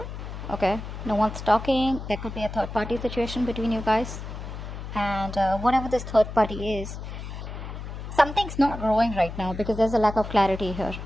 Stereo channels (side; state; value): left; noise; hum, 9 dB below the sound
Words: Okay, no one's talking. There could be a third party situation between you guys. And whatever this third party is, something's not growing right now because there's a lack of clarity here.